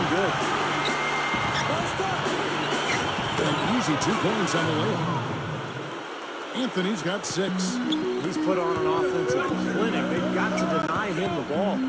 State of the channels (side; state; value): both; identical; correlation 1.00